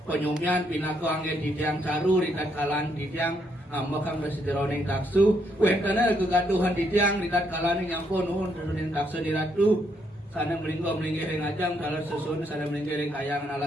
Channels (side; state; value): both; normal; correlation 0.75